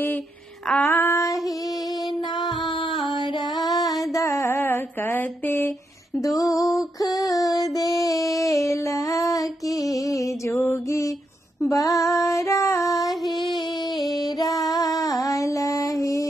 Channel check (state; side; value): normal; both; correlation 0.82